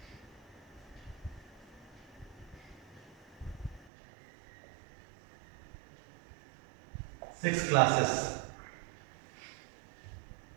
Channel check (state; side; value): drops out; left; at 3.9 s